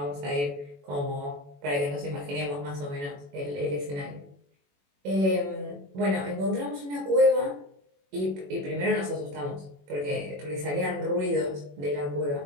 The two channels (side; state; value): left; late; 21 ms